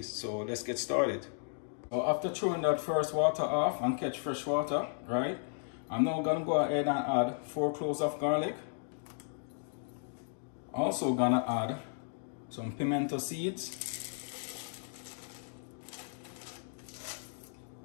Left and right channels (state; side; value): silent; right; digital silence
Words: So let's get started. So after throwing that first water off and catch fresh water, right? I'm now going to go ahead and add 4 cloves of garlic. Also going to add some pimento seeds.